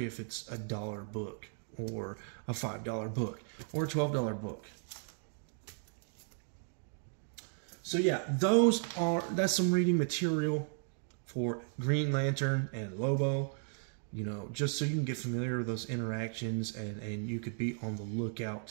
if it's $1 book or a $5 book or a $12 book. So yeah, that's some reading material for Green Lantern and Lobo. You know, just so you can get familiar with those interactions, and you could be on the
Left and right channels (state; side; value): silent; left; 54 dB below the other